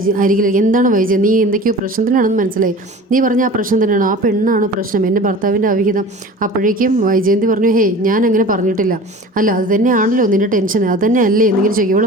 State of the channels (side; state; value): both; normal; correlation 0.40